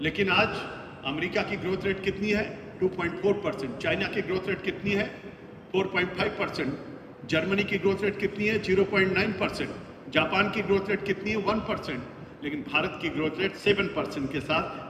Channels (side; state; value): both; identical; correlation 1.00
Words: लेकिन आज अमेरिका की ग्रोथ रेट कितनी है? 2.4%। चाइना की ग्रोथ रेट कितनी है? 4.5%। जर्मनी की ग्रोथ रेट कितनी है? 0.9%। जापान की ग्रोथ रेट कितनी है? 1%। लेकिन भारत की ग्रोथ रेट 7% के